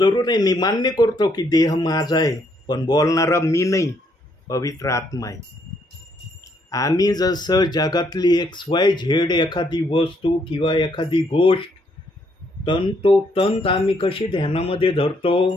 आहे, मी मान्य करतो की देह माझा आहे, पण बोलणारा मी नाही, पवित्र आत्मा आहे. आम्ही जसं जगातली XYZ एखादी वस्तू किंवा एखादी गोष्ट तंतोतंत आम्ही कशी ध्यानामध्ये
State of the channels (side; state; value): both; normal; correlation 0.71